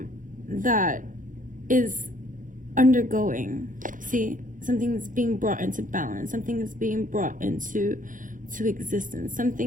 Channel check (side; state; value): left; late; 0.38 ms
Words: that is undergoing. See, something is being brought into balance. Something is being brought into existence.